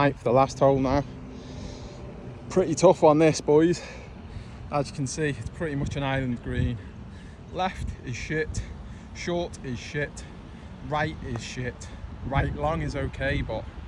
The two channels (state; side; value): identical; both; correlation 1.00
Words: the last hole now. Pretty tough on this, boys. As you can see, it's pretty much an island green. Left is shit, short is shit, right is shit. Right long is okay, but